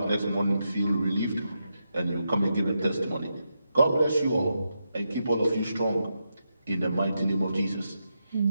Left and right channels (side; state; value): both; inverted; correlation -0.85